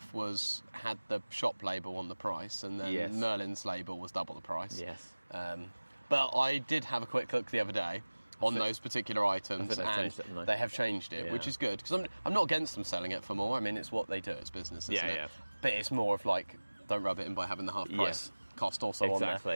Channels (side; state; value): both; inverted; correlation -1.00